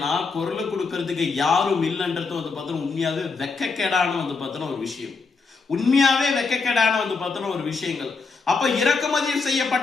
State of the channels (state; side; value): quieter; right; 4.5 dB